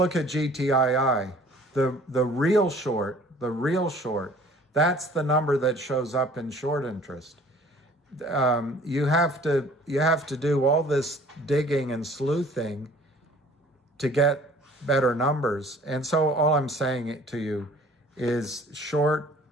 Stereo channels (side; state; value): both; normal; correlation 0.52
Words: at GTII. The real short, that's the number that shows up in short interest. You have to do all this digging and sleuthing to get better numbers. And so all I'm saying to you is I'm